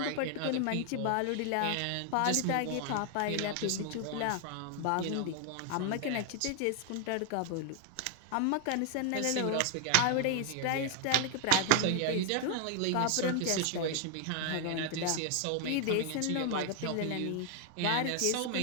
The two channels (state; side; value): different; both; correlation 0.00